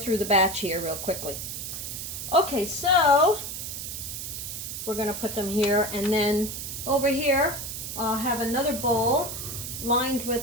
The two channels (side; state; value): right; noise; hiss, 6 dB below the sound